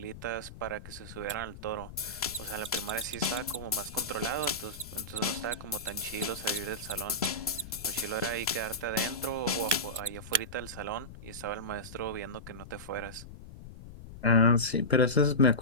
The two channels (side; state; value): left; noise; rumble, 14 dB below the sound